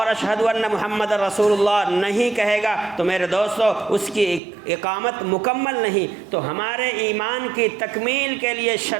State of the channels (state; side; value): drops out; left; at 4.4 s